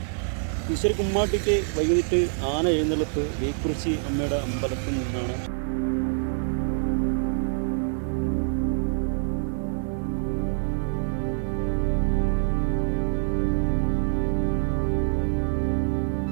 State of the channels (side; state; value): left; silent; 61 dB below the other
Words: പുതുശ്ശേരി കുമ്മാട്ടിക്ക് വൈകിട്ട് ആന എഴുന്നള്ളിപ്പ് വേക്കുറിച്ചി അമ്മയുടെ അമ്പലത്തിൽ നിന്നാണ്.